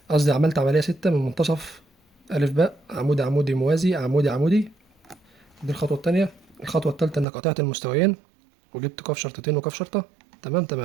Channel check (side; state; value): left; drops out; at 7.2 s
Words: قصدي عملت عمليه 6 من منتصف الف باء، عمودي عمودي موازي عمودي عمودي. دي الخطوه التانيه. الخطوه التالته انك قطعت المستويين وجبت قاف شرطتين وقاف شرطه.